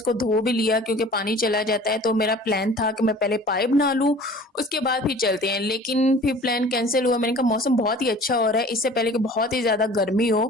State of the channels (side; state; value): both; normal; correlation 0.46